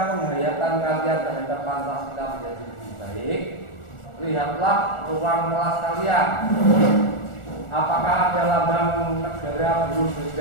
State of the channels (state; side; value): late; right; 1.4 ms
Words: penghayatan kalian terhadap Pancasila menjadi lebih baik, lihatlah ruang kelas kalian. Apakah ada lambang negara berunsur